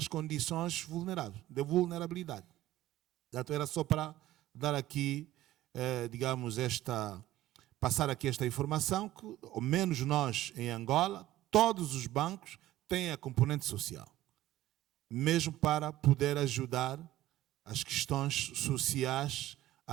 condições vulneráveis, de vulnerabilidade. Portanto, era só para dar aqui, digamos, passar aqui esta informação, que, ao menos nós, em Angola, todos os bancos têm a componente social, mesmo para poder ajudar as questões sociais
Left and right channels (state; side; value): quieter; left; 14.8 dB